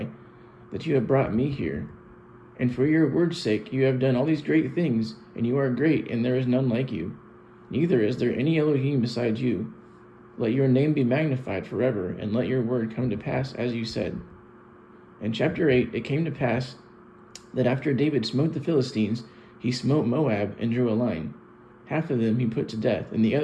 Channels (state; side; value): identical; both; correlation 1.00